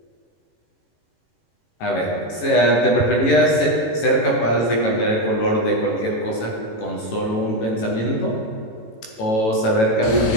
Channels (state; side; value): late; right; 18 ms